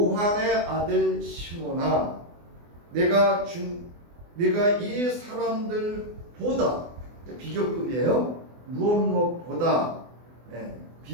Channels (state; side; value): late; left; 24 ms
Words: 아들 시몬아, 내가 이 사람들보다, 비교급이에요. 무엇보다